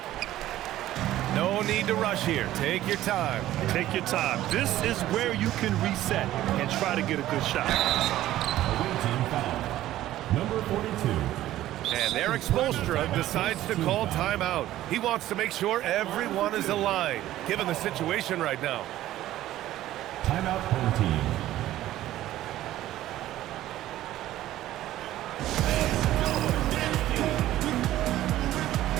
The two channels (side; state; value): left; quieter; 14.2 dB